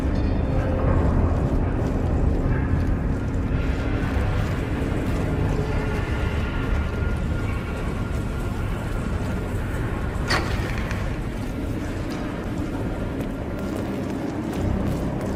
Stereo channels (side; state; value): both; identical; correlation 1.00